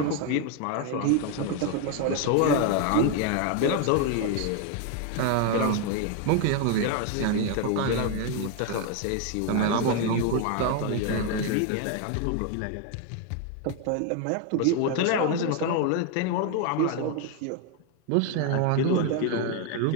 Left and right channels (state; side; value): different; both; correlation 0.01